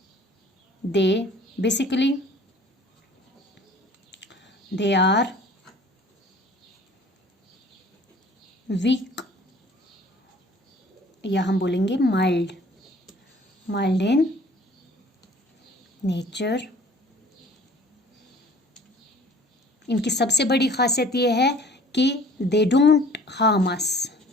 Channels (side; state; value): both; normal; correlation 0.50